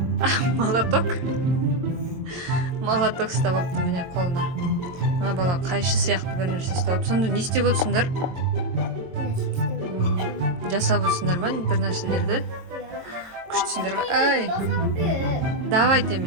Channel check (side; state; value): left; late; 22 ms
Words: Молоток? Молоток ұстап алыпты міне қолына. Мына бала қайшы сияқты бір нәрсе ұстап алып. Сонда не істеп отырсыңдар? Жасап отырсыңдар ма бір нәрселерді? Күштісіңдер ғой. Ай! Давайте